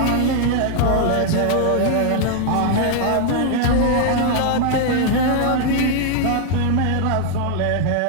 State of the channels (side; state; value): both; different; correlation 0.00